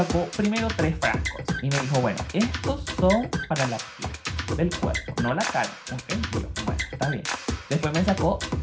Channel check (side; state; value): both; identical; correlation 1.00